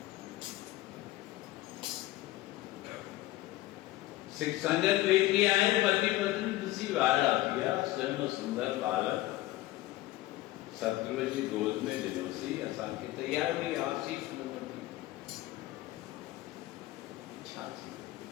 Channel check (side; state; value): right; quieter; 17.0 dB